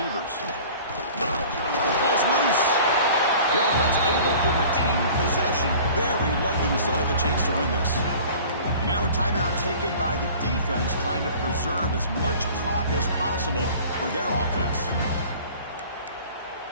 Ball's loose. The offense able to retain possession. Very lucky to still have a chance to win this. And now a timeout taken by the defense, trying to preserve as much clock as possible for their offense.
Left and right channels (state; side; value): inverted; both; correlation -0.45